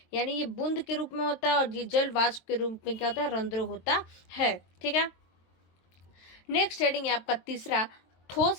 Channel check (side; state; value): right; late; 23 ms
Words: यानी ये बूंद के रूप में होता है और ये जल वाष्प के रूप में क्या होता है, रंध्र होता है। ठीक है, नेक्स्ट हेडिंग है आपका तीसरा,